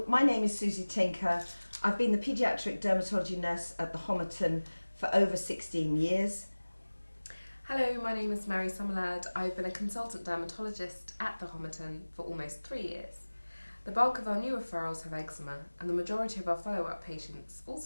my name is Susie Tinker. I've been the paediatric dermatology nurse at the Homerton for over 16 years. Hello, my name is Mary Summerlad. I've been a consultant dermatologist at the Homerton for almost 3 years. The bulk of our new referrals have eczema, and the majority of our follow-up patients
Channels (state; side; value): inverted; both; correlation -1.00